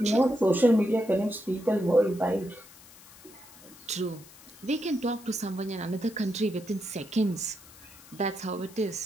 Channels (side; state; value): left; noise; hiss, 22 dB below the sound